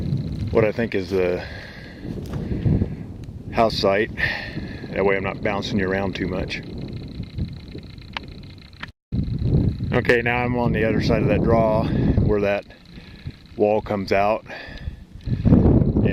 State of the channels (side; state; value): both; identical; correlation 1.00